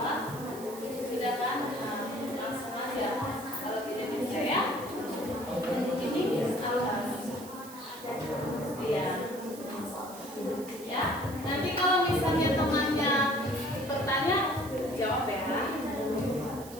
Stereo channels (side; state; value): right; noise; hiss, 16 dB below the sound